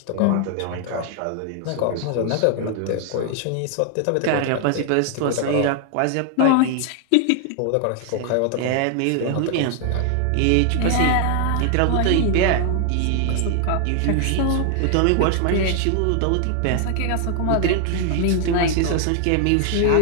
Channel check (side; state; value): both; different; correlation 0.00